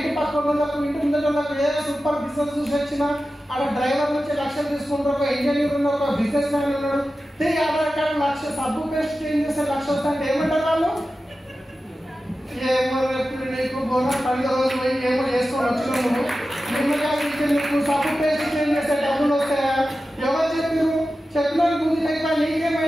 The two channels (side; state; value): both; normal; correlation 0.93